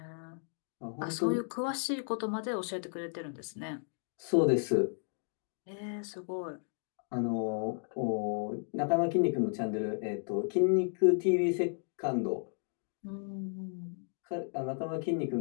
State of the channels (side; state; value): right; silent; 55 dB below the other